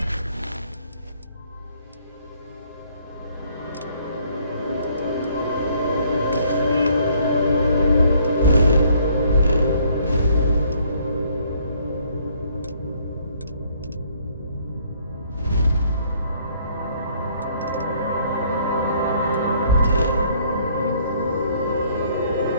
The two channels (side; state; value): both; inverted; correlation -0.63